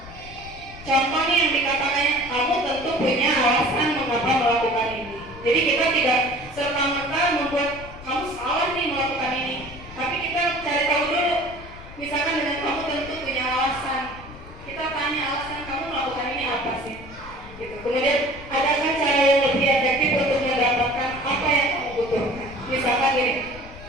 Contoh nih yang dikatakannya, kamu tentu punya alasan mengapa melakukan ini. Jadi kita tidak serta-merta membuat kamu salah nih melakukan ini. Tapi kita cari tahu dulu. Misalkan dengan kamu tentu punya alasan. Kita tanya alasan kamu melakukan ini apa sih? Gitu. Kemudian adakah cara yang lebih efektif untuk mendapatkan apa yang kamu butuhkan? Misalkan gini,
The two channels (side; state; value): left; noise; rumble, 16 dB below the sound